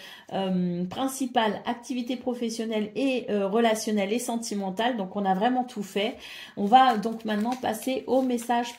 principales, activité professionnelle et relationnelle et sentimentale. Donc on a vraiment tout fait. On va donc maintenant passer au message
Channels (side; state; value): both; identical; correlation 1.00